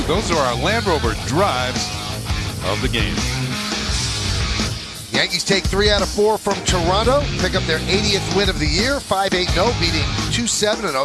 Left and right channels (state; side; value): identical; both; correlation 1.00